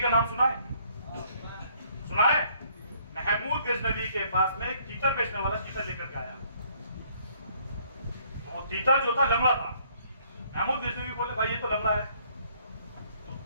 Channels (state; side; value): inverted; both; correlation -0.64